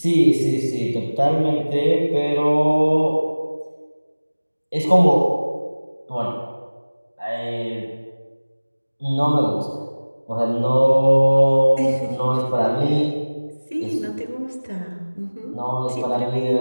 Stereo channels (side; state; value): both; inverted; correlation -1.00